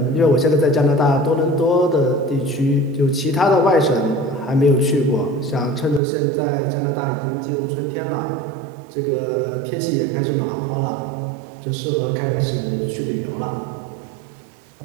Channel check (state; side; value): drops out; left; at 6.0 s